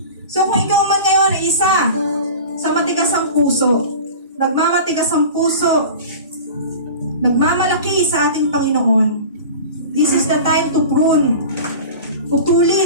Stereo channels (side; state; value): both; inverted; correlation -0.36